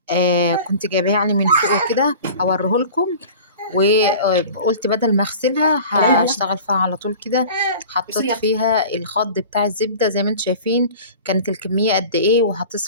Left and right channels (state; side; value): inverted; both; correlation -0.40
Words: كنت جايباها يعني من فوق كده هوريهولكم. وقلت بدل ما اغسلها هشتغل فيها على طول كده. حطيت فيها الخض بتاع الزبدة زي ما انتم شايفين كانت الكمية قد ايه،